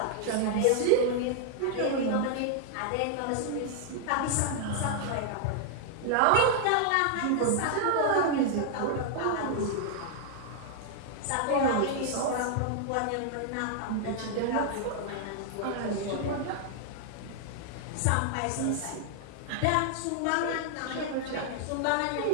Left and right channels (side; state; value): both; different; correlation 0.00